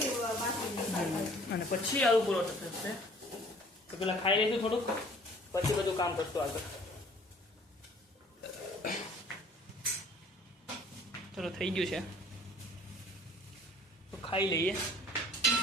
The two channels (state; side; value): normal; both; correlation 0.53